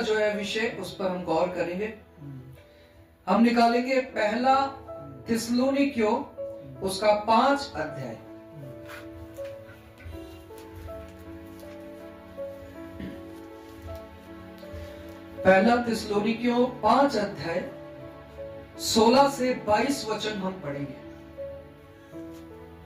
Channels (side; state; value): both; identical; correlation 1.00